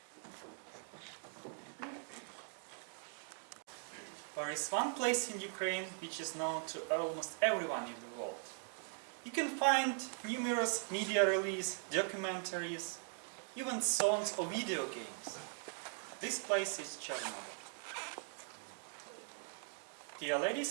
There is one place in Ukraine which is known to almost everyone in the world. You can find numerous media releases, documentaries, even songs or video games. This place is Chernobyl. Dear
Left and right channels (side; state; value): left; silent; 51 dB below the other